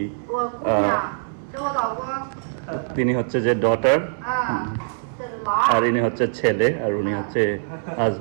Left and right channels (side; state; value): left; silent; 63 dB below the other